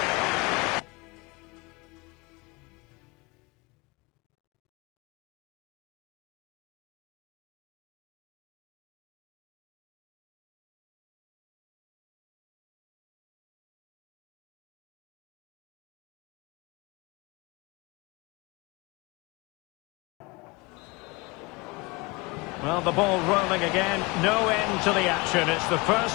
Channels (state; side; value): quieter; right; 25.3 dB